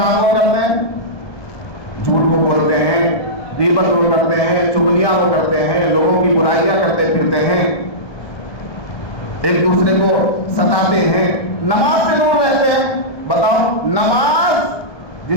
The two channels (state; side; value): late; right; 1.1 ms